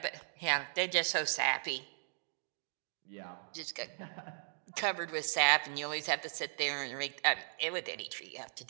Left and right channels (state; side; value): silent; left; digital silence